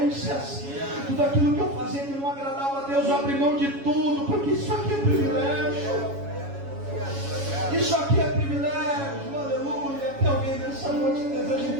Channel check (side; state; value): left; late; 7.2 ms